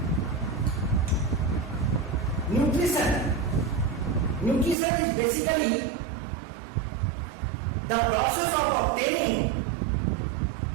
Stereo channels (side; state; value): left; drops out; at 4.8 s